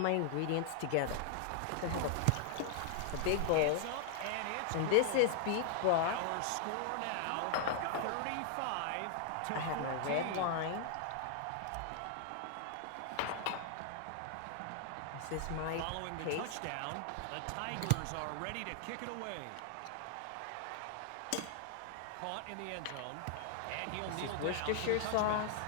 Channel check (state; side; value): different; both; correlation 0.00